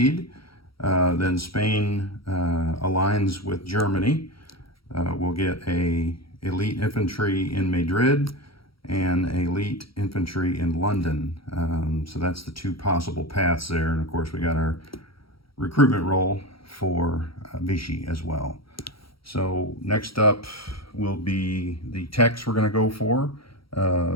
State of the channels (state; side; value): late; right; 0.75 ms